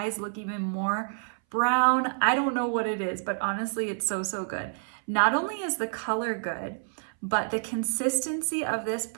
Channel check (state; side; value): silent; left; 59 dB below the other